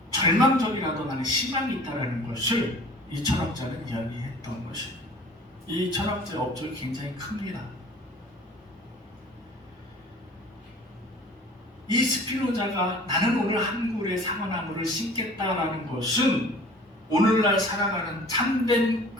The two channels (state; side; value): normal; both; correlation 0.47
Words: 절망적이라도 나는 희망이 있다는 것을 이 철학자는 이야기했던 것입니다. 이 철학자의 업적이 굉장히 큽니다. 이 스피노자가 나는 오늘 한 그루의 사과나무를 심겠다라는 것은 오늘날 살아가는 참된